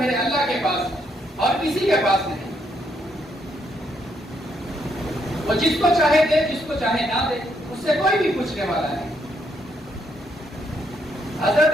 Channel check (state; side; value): normal; both; correlation 0.75